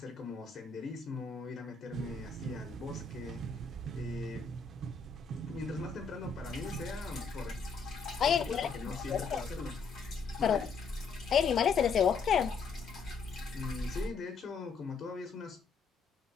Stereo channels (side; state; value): right; quieter; 5.2 dB